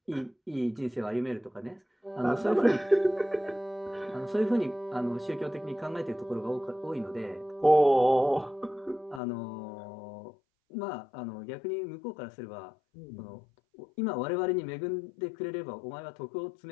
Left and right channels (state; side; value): drops out; right; at 9.2 s